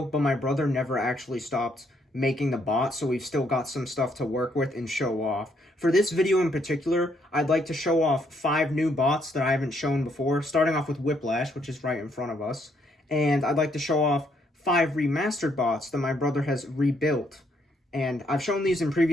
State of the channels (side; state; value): both; normal; correlation 0.72